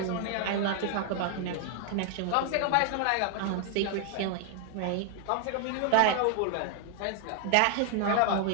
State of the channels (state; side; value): different; both; correlation 0.00